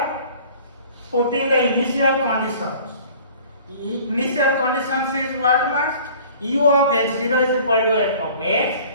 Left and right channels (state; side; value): inverted; both; correlation -0.48